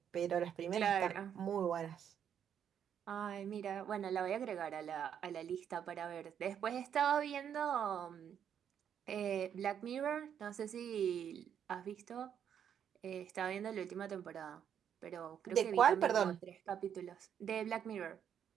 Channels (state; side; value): quieter; left; 8.7 dB